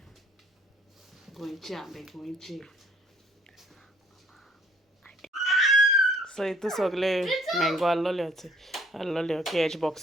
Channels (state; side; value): normal; both; correlation 0.60